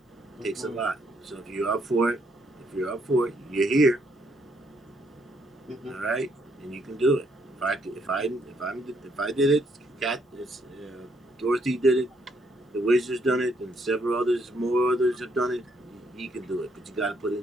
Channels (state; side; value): normal; both; correlation 0.72